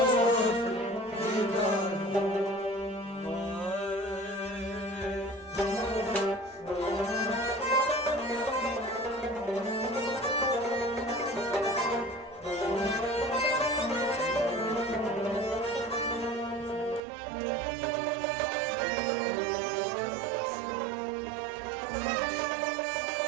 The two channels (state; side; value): drops out; left; at 17.0 s